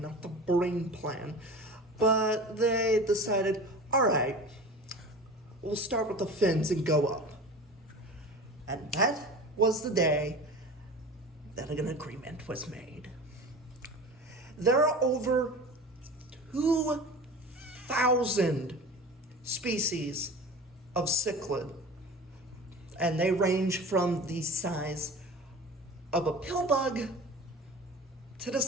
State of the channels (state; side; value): normal; both; correlation 0.36